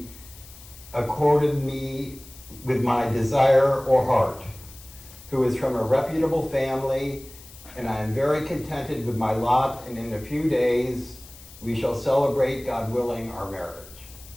accorded me with my desire or heart, who is from a reputable family, and I am very contented with my lot, and in a few days we shall celebrate, God willing, our marriage.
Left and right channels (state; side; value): noise; left; hiss, 20 dB below the sound